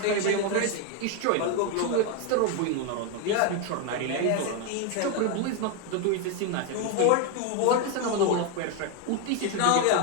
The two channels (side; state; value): both; different; correlation 0.01